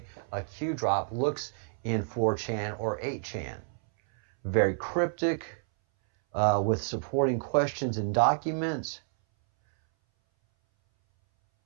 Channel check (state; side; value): silent; left; 58 dB below the other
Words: a Q drop looks in 4chan or 8chan. Very cryptic, with supporting questions and documents.